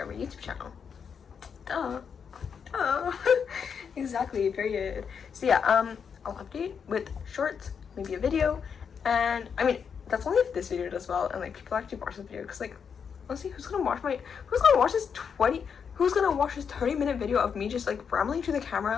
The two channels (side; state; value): right; quieter; 6.7 dB